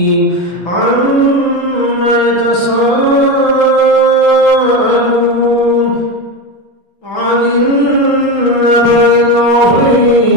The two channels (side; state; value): right; late; 6.1 ms